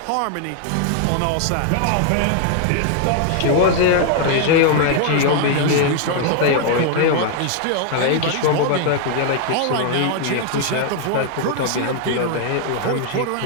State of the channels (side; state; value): both; different; correlation 0.00